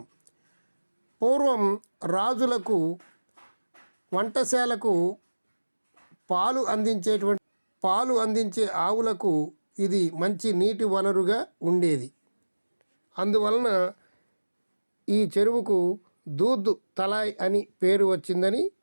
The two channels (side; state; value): both; inverted; correlation -1.00